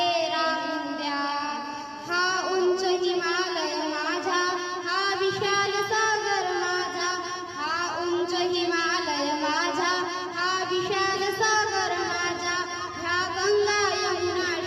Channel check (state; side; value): identical; both; correlation 1.00